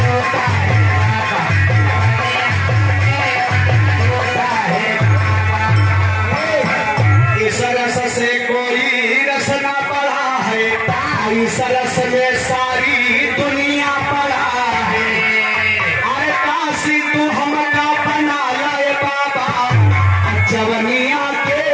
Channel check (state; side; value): identical; both; correlation 1.00